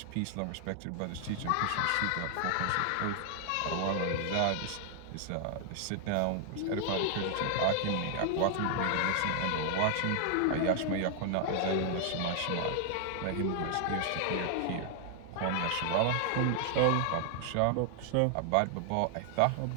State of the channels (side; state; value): both; different; correlation 0.00